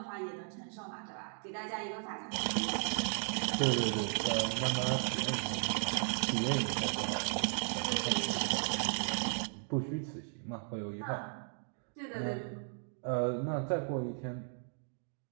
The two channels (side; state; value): left; silent; 54 dB below the other